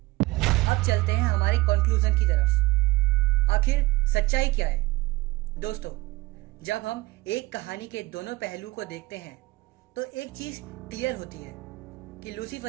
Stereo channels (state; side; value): quieter; left; 20.8 dB